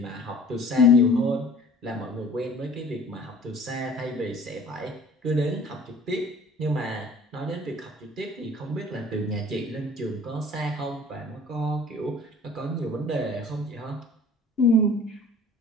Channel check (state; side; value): normal; both; correlation 0.48